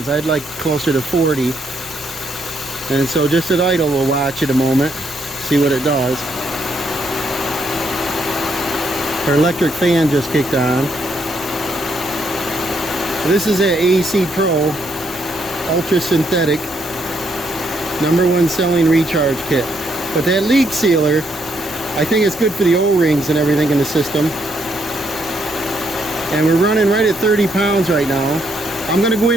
I'd like closer to 40. And so just at idle, we'll watch it a moment, see what it does. Our electric fan just kicked on. This is an AC Pro Ultra Synthetic #1 selling recharge kit. But that leak sealer, I think it's good for the O-rings and everything in the system. And we're running right at 30 pounds right now. I'm going to go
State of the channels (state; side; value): normal; both; correlation 0.74